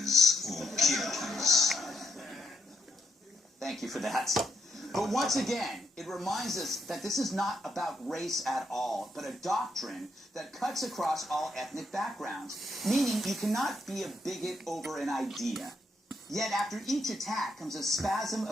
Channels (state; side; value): normal; both; correlation 0.76